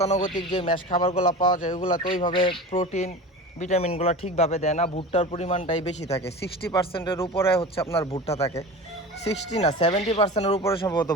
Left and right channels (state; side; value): normal; both; correlation 0.33